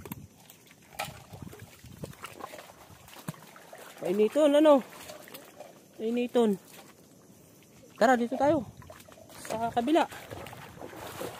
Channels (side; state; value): both; identical; correlation 1.00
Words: Painiton, ano? Painiton. Tara, dito tayo. Sa kabila.